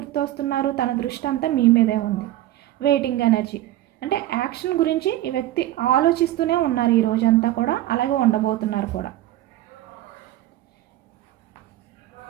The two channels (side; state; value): left; quieter; 14.6 dB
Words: తన దృష్టి అంతా మీ మీదే ఉంది. వెయిటింగ్ ఎనర్జీ అంటే యాక్షన్ గురించి ఈ వ్యక్తి ఆలోచిస్తూనే ఉన్నారు ఈ రోజంతా కూడా, అలాగే ఉండబోతున్నారు కూడా.